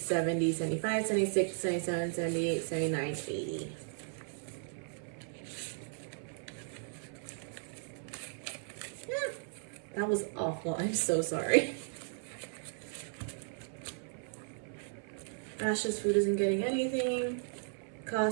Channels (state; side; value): silent; left; 54 dB below the other